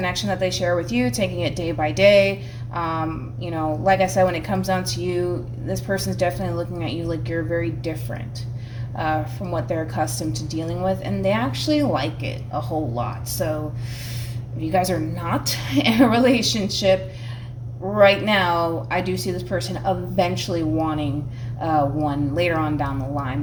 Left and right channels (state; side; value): identical; both; correlation 1.00